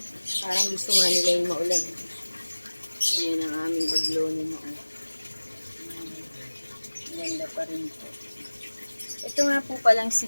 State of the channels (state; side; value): inverted; both; correlation -1.00